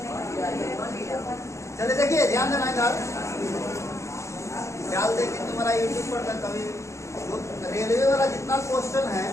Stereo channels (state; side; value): late; right; 0.14 ms